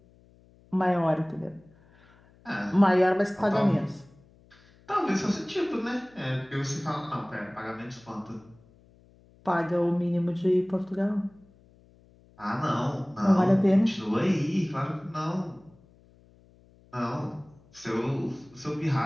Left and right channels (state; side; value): noise; left; hum, 28 dB below the sound